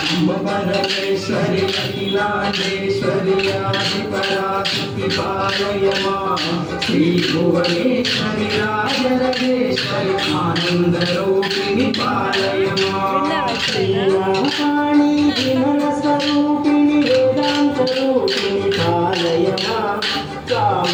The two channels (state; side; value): identical; both; correlation 1.00